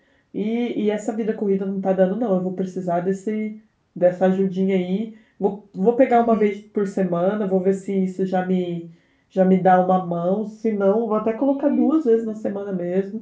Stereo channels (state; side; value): identical; both; correlation 1.00